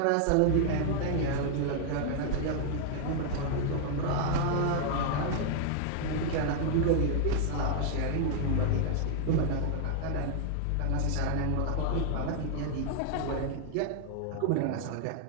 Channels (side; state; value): both; different; correlation 0.00